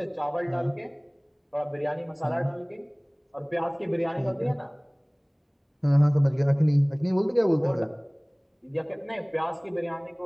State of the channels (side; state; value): both; identical; correlation 1.00